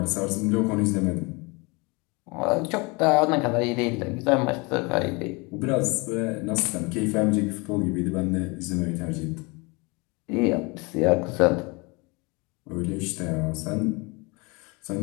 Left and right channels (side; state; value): right; quieter; 27.6 dB